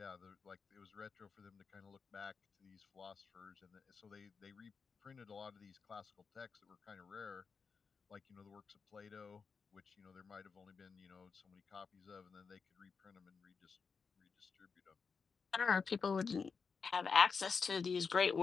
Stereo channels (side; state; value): right; quieter; 5.4 dB